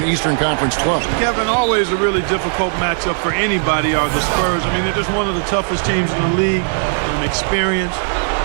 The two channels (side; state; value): left; silent; 57 dB below the other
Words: Eastern Conference club. Kevin, always a really difficult matchup for anybody are the Spurs. I mean, they're just one of the toughest teams in the league. Experienced,